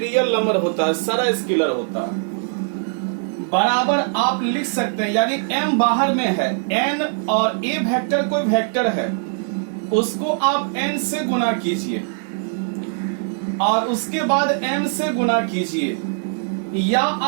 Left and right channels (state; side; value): silent; left; digital silence